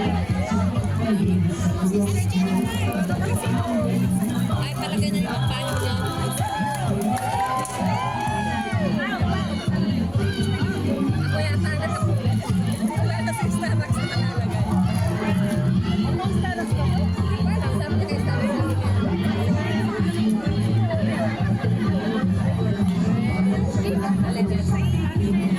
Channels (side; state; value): left; noise; hum, 22 dB below the sound